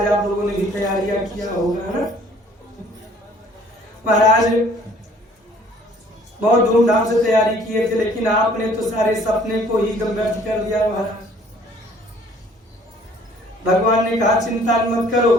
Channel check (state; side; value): normal; both; correlation 0.56